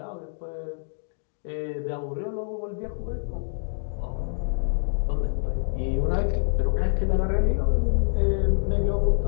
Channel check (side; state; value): right; silent; digital silence